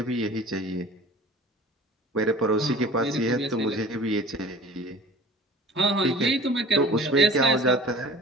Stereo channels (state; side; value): normal; both; correlation 0.43